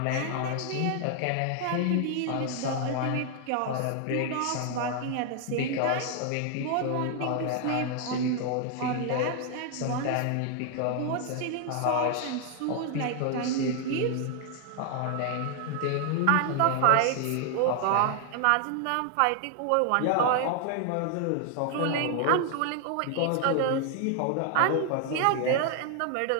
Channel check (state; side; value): different; both; correlation 0.00